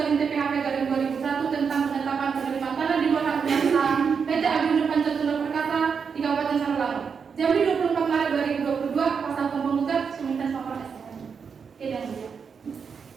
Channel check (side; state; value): left; quieter; 6.1 dB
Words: TPHP garing 2001 tentang penetapan penerimaan tanah di bawah hak guna usaha PT Agrindo Pancatula Perkasa di Kabupaten Sarolangun. Jambi 24 Maret 2022, kuasa hukum penggugat Suminten Sopor STM. Oke, dan ya.